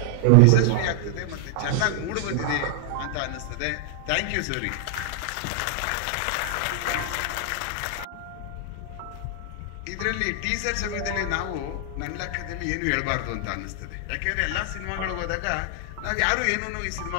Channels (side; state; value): both; different; correlation 0.00